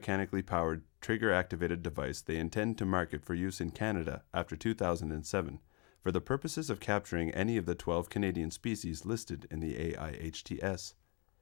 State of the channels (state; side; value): quieter; right; 32.2 dB